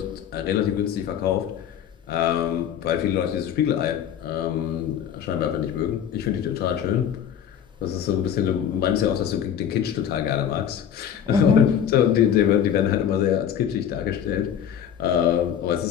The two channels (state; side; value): quieter; right; 9.1 dB